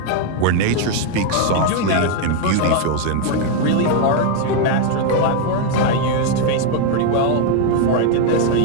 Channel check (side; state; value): both; different; correlation 0.01